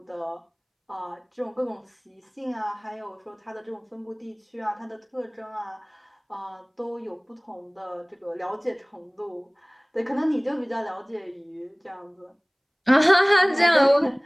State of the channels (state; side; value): identical; both; correlation 1.00